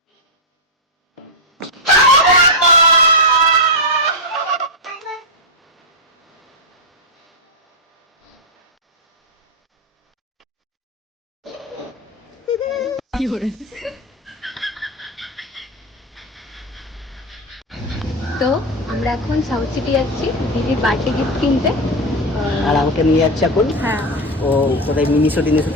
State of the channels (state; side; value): normal; both; correlation 0.08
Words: তো আমরা এখন সাউথ সিটি যাচ্ছি দিদির বার্থডে গিফট কিনতে। আর আমাকে নিয়ে যাচ্ছে এখন। হ্যাঁ ও কোথায় মিনিশো থেকে